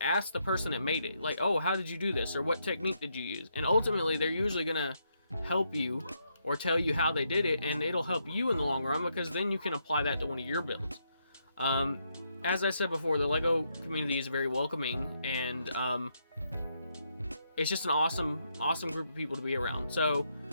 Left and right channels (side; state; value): both; inverted; correlation -0.78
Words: the person that made it, like, oh, how did you do this, or what technique did you use? And ultimately, they're usually gonna help you or tell you how they did it, and it'll help you in the long run, because then you can apply that to one of your builds. As I said before, the LEGO community is very welcoming, and it's just an awesome group of people to be around. So,